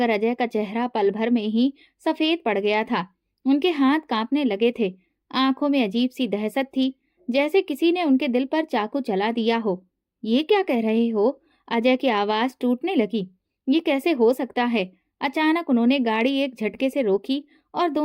अजय का चेहरा पल भर में ही सफेद पड़ गया था। उनके हाथ कांपने लगे थे। आंखों में अजीब सी दहशत थी, जैसे किसी ने उनके दिल पर चाकू चला दिया हो। ये क्या कह रहे हो? अजय की आवाज टूटने लगी। ये कैसे हो सकता है? अचानक उन्होंने गाड़ी एक झटके से रोकी और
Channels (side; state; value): both; identical; correlation 1.00